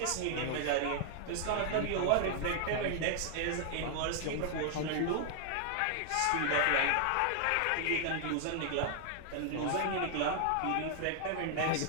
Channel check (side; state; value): both; different; correlation 0.00